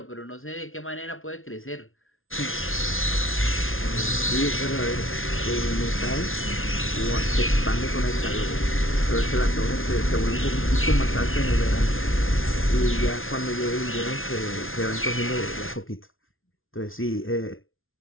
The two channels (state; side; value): late; right; 0.60 ms